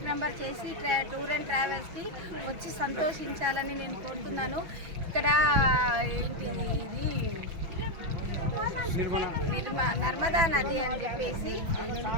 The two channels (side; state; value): left; late; 6.0 ms